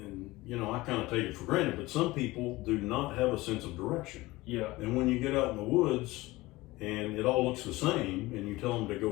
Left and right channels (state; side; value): quieter; right; 19.9 dB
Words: I kind of take it for granted, but some people do not have a sense of direction. Yeah. And when you get out in the woods and it all looks the same, and you tell them to